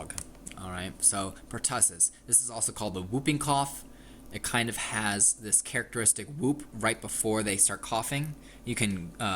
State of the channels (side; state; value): both; identical; correlation 1.00